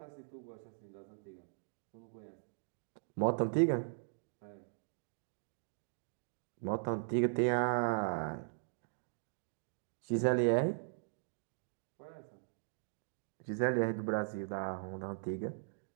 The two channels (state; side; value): silent; left; digital silence